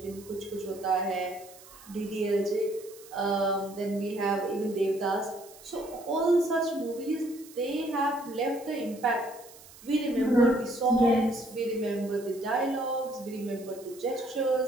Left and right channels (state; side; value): noise; right; hiss, 21 dB below the sound